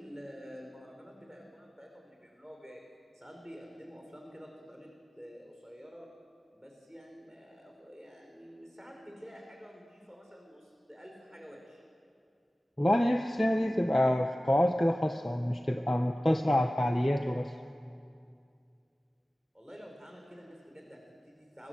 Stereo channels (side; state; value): both; normal; correlation 0.97